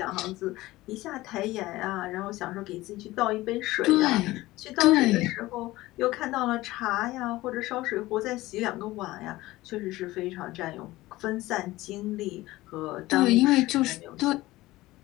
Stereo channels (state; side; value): quieter; right; 18.1 dB